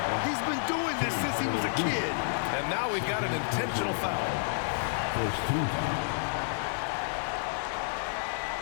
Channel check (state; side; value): silent; right; digital silence